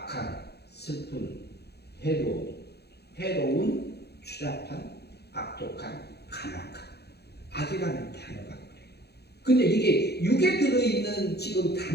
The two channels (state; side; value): late; right; 0.48 ms